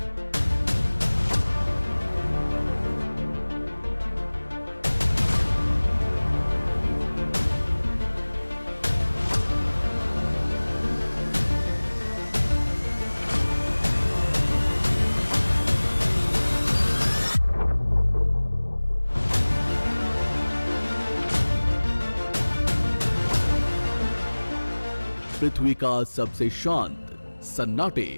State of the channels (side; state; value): both; inverted; correlation -1.00